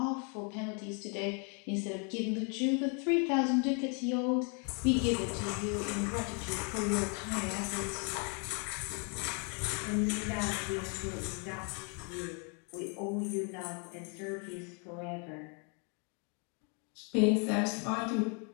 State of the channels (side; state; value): right; quieter; 37.4 dB